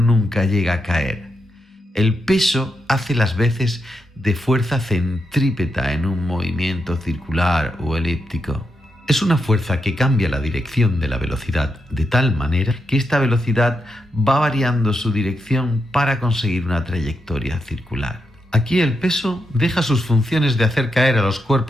llega a caer. El peso hace las veces de fuerza centrípeta en un movimiento circular o elíptico. Es una fuerza que cambia la dirección de la velocidad de tal manera que esta velocidad va variando su dirección para conseguir una trayectoria circular. Aquí el peso deja sus funciones de hacer caer a los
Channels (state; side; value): normal; both; correlation 0.84